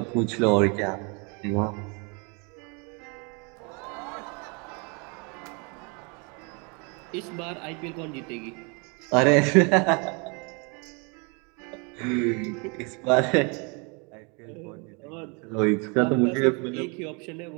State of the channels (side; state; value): left; quieter; 32.7 dB